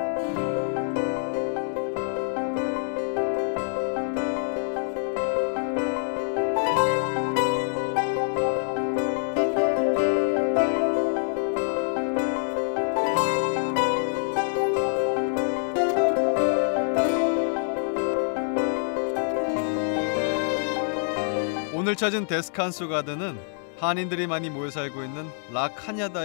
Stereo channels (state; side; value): silent; right; digital silence